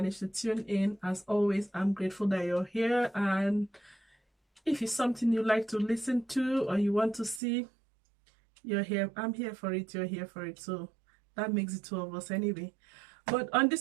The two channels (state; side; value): drops out; left; at 7.4 s